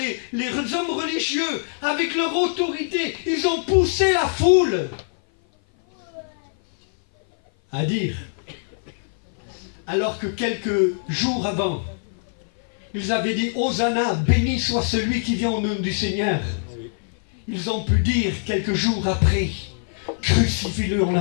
les hommes religieux, avec leur autorité, ils ont poussé la foule à dire, alors que quelques jours avant, ils avaient dit, Hosanna, béni soit celui qui vient au nom du Seigneur. Ils ont pu dire quelques jours après, crucifie-le, on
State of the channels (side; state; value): right; silent; 56 dB below the other